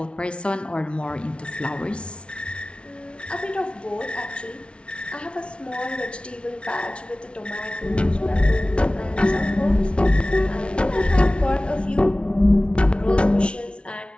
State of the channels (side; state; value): right; late; 0.059 ms